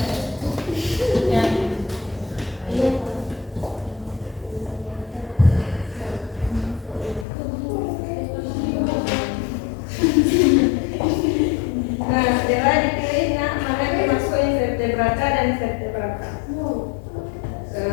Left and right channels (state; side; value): drops out; right; at 7.2 s